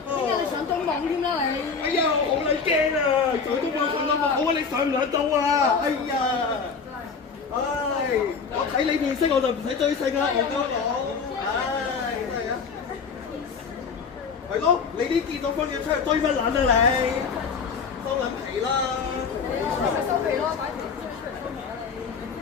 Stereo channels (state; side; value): quieter; right; 5.5 dB